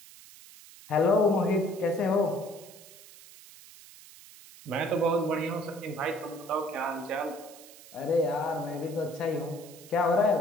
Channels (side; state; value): right; noise; hiss, 20 dB below the sound